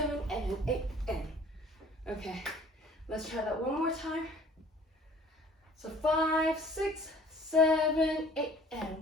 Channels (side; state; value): both; normal; correlation 0.51